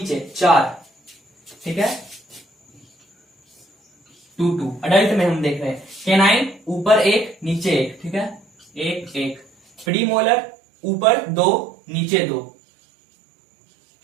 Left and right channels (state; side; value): drops out; left; at 9.9 s